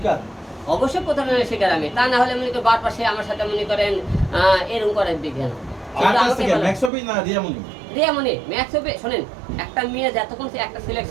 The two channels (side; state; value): left; drops out; at 6.9 s